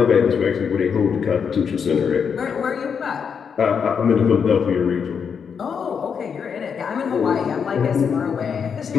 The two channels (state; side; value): quieter; right; 6.7 dB